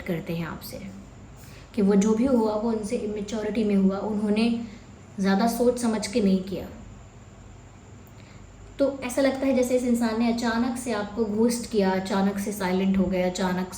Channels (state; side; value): identical; both; correlation 1.00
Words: करते हैं आपसे कि वो जो भी हुआ वो उनसे इमेच्योरिटी में हुआ, उन्होंने ज़्यादा सोच समझ के नहीं किया। तो ऐसा लगता है जैसे इस इंसान ने अचानक से आपको घोस्ट किया, अचानक से साइलेंट हो गया, अचानक